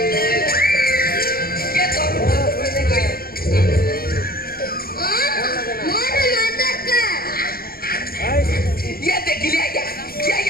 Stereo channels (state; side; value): late; right; 0.43 ms